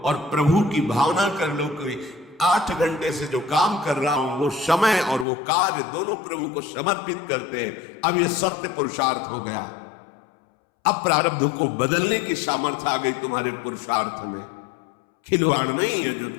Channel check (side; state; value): right; drops out; at 5.2 s